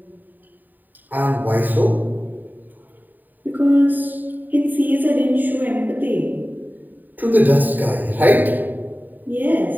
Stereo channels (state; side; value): late; left; 0.087 ms